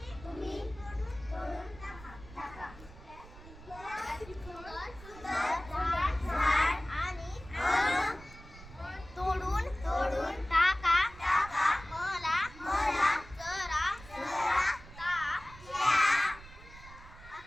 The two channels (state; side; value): noise; right; rumble, 18 dB below the sound